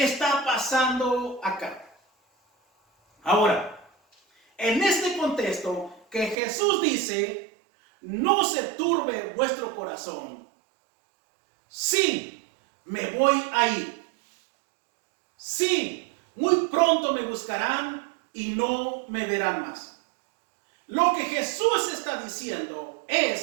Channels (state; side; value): drops out; left; at 6.4 s